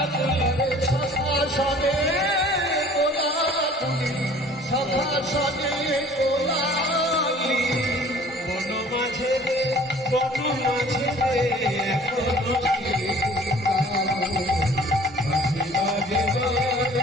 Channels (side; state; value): both; normal; correlation 0.50